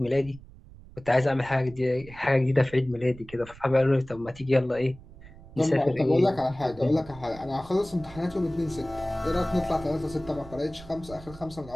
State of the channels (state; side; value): noise; right; rumble, 19 dB below the sound